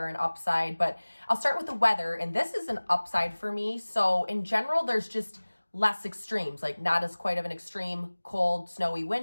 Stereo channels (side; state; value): both; inverted; correlation -1.00